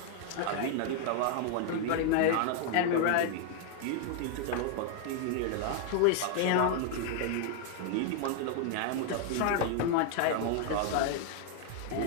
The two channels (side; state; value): both; different; correlation 0.00